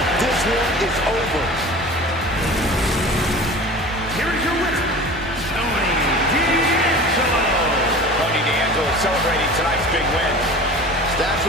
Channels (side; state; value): both; normal; correlation 0.38